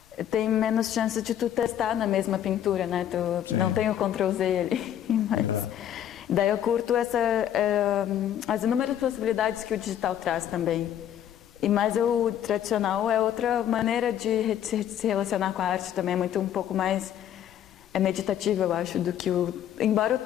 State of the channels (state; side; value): quieter; right; 10.5 dB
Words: tem menos chance de tu testar na mesma pintura, né? Tu não tem o Ctrl-Z ali, mas daí eu curto as inúmeras possibilidades que o digital traz também. Mas o tradicional é outra maneira de se relacionar com a arte também, é um pouco mais meditativo, eu acho, do que embora